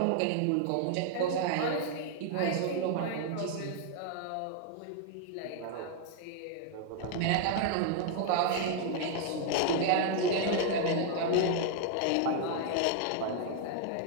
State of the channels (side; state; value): both; different; correlation 0.00